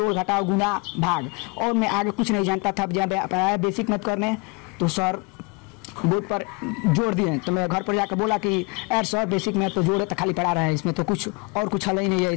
घटाव, गुना, भाग, और मैं आगे कुछ नहीं जानता था। जब आया बेसिक मैथ करने तो सर बोर्ड पर जोड़ दिए, तो मैं घर पर जाकर बोला कि यार सर बेसिक मैथ तो जोड़ है तो खाली पढ़ा रहा है, इसमें तो कुछ हल ही नहीं है,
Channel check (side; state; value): right; quieter; 29.0 dB